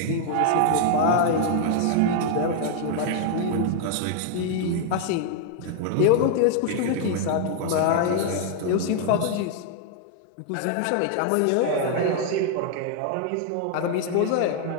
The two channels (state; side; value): different; both; correlation 0.00